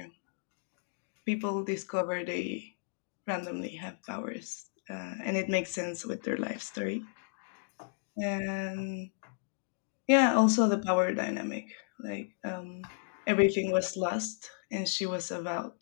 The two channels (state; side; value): silent; right; digital silence